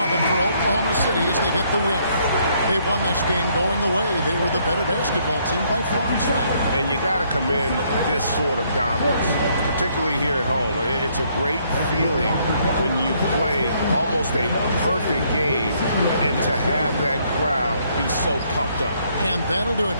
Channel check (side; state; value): both; inverted; correlation -0.69